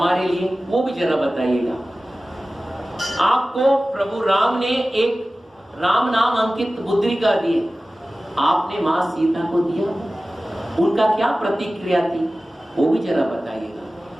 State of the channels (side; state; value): both; normal; correlation 0.96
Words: लिए, वो भी जरा बताइएगा। आपको प्रभु राम ने एक राम नाम अंकित मुद्रिका दी, आपने मां सीता को दिया, उनका क्या प्रतिक्रिया थी वो भी जरा